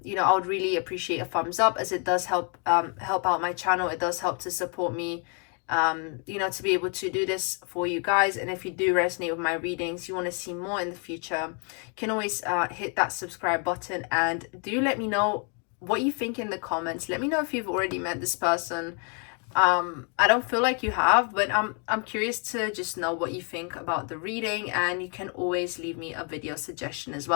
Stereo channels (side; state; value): right; quieter; 38.6 dB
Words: know, I would really appreciate a thumbs up, as it does help out my channel. It does help to support me, you know, to be able to do this for you guys. And if you do resonate with my readings, you want to see more in the future, you can always hit that subscribe button, and do let me know what you think in the comments. Let me know if you've already met this person. I don't feel like you have, but I'm curious to just know what you think about the reading, and you can always leave me a video suggestion as